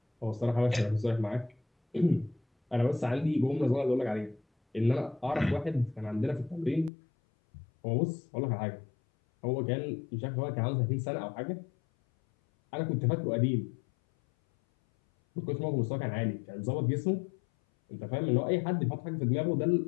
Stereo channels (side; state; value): right; drops out; at 6.9 s